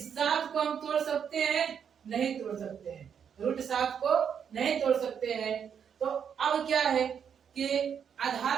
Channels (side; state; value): left; quieter; 7.7 dB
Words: को हम तोड़ सकते हैं नहीं तोड़ सकते हैं, रूट 7 को नहीं तोड़ सकते हैं, तो अब क्या है कि आधार